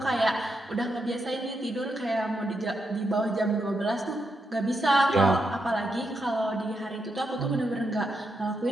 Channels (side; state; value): both; normal; correlation 0.83